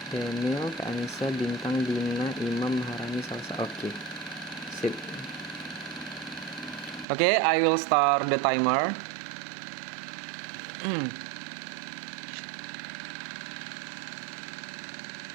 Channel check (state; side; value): drops out; left; at 7.1 s